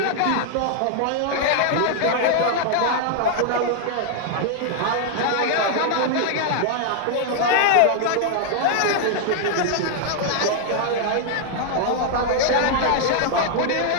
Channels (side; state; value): both; different; correlation 0.00